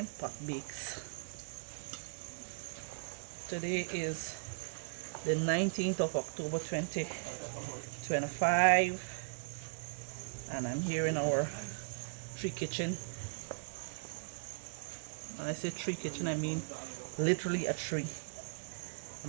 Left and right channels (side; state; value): left; silent; digital silence